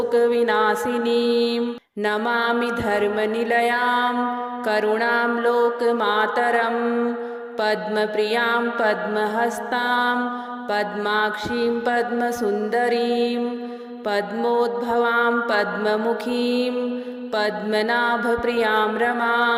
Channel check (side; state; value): both; identical; correlation 1.00